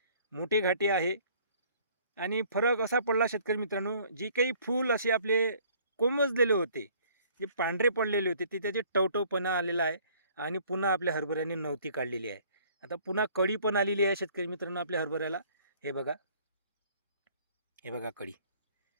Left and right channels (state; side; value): inverted; both; correlation -0.57